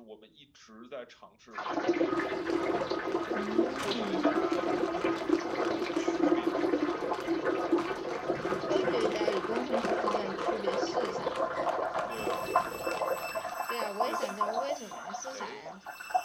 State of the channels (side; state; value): both; identical; correlation 1.00